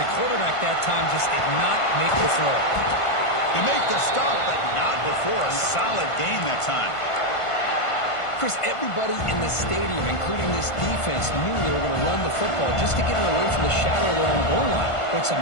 quarterback that time just did not make the throw. They make the stop, but not before a solid gain that time. Chris, everybody in the stadium, including this defense, knew they were going to run the football just to get it away from the shadow of their own goal line. What's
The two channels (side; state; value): right; late; 1.5 ms